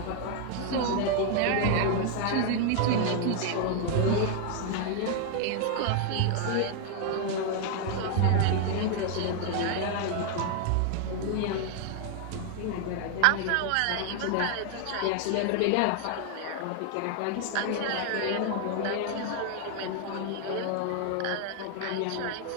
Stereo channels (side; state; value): both; different; correlation 0.00